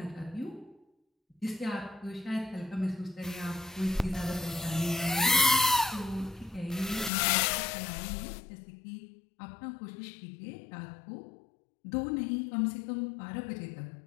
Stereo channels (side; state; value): right; drops out; at 7.1 s